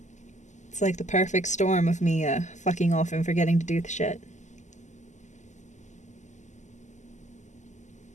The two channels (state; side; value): late; right; 0.34 ms